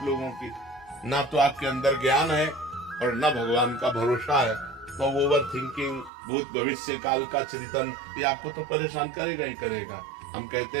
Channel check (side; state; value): left; drops out; at 6.1 s